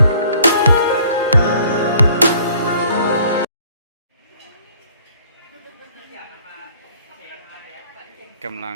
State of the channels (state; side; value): inverted; both; correlation -0.58